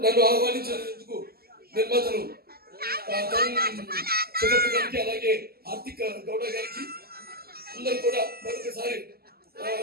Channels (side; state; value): left; late; 0.45 ms